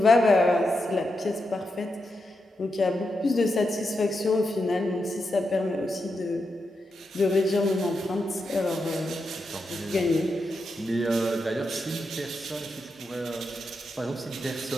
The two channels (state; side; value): normal; both; correlation 0.86